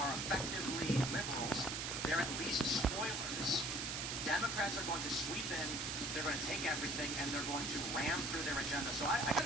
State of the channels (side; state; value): right; noise; hiss, 2 dB below the sound